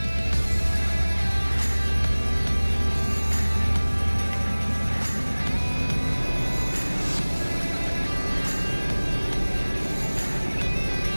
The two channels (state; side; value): inverted; both; correlation -1.00